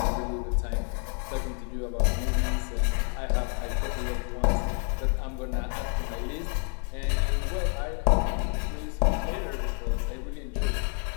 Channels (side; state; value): right; quieter; 39.9 dB